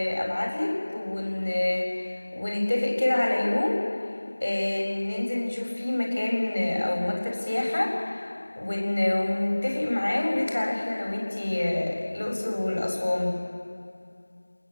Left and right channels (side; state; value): both; inverted; correlation -1.00